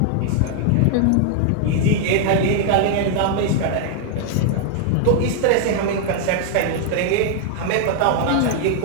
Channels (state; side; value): different; both; correlation 0.00